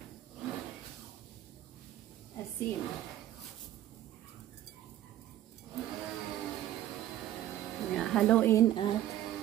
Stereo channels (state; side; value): quieter; left; 12.9 dB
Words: Asin. Haluin at